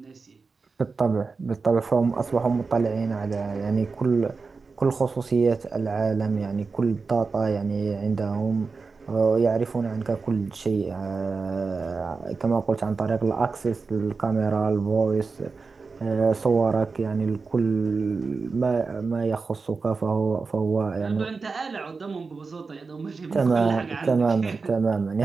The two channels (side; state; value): left; quieter; 4.5 dB